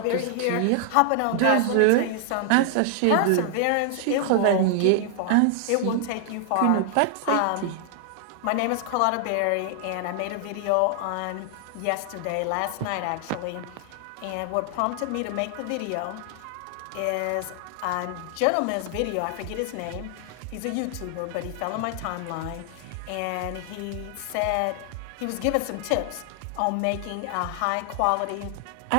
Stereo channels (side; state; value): both; different; correlation 0.00